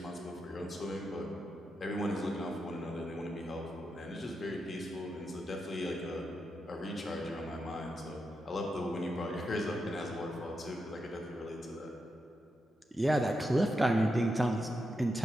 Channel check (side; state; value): both; normal; correlation 0.86